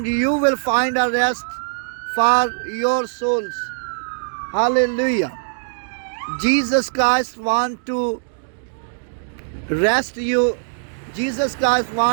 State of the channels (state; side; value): silent; left; digital silence